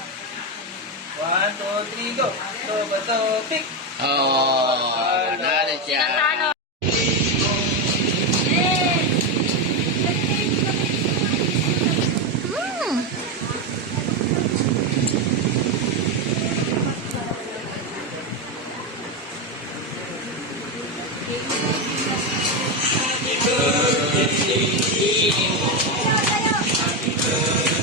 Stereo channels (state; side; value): normal; both; correlation 0.10